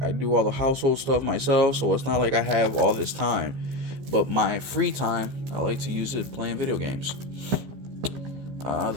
all the household stuff myself, so it's not like I have all this time. But my free time, I like to use it playing video games.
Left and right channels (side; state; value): left; late; 15 ms